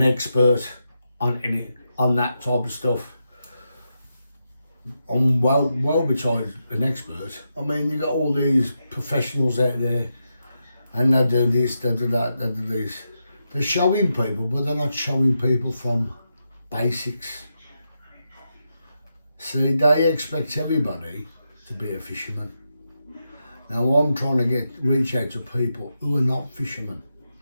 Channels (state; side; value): inverted; both; correlation -0.86